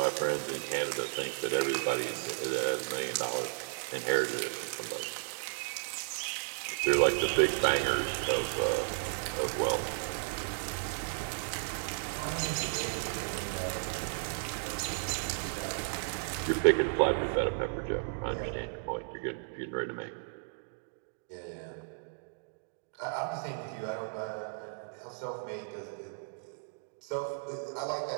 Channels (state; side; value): silent; left; digital silence